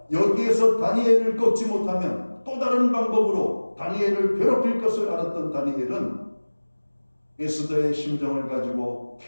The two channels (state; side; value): inverted; both; correlation -1.00